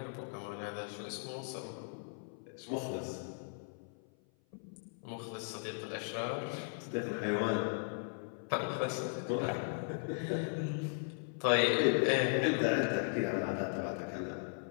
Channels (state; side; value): silent; right; 53 dB below the other